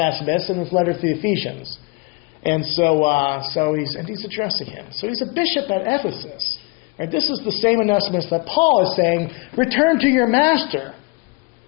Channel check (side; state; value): right; quieter; 28.1 dB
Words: in his letter to the Ephesians. And so he's addressing him. So he's a bishop at Ephesus. Right? This is the same Onesimus that Paul is saying, return to your master.